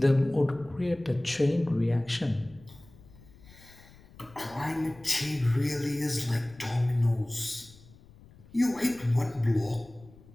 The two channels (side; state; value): left; noise; rumble, 23 dB below the sound